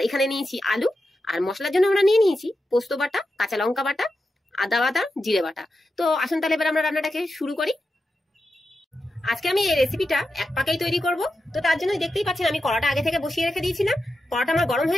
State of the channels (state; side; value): normal; both; correlation 0.89